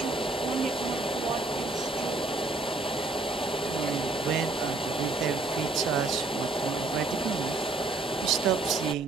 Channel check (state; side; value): quieter; left; 3.3 dB